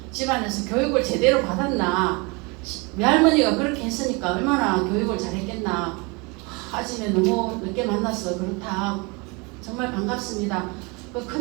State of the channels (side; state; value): left; quieter; 28.6 dB